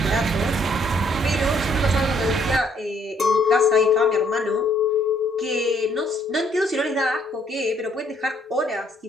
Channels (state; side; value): normal; both; correlation 0.66